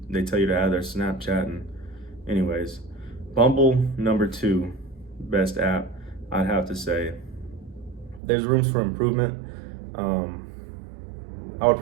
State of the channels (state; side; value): drops out; left; at 8.2 s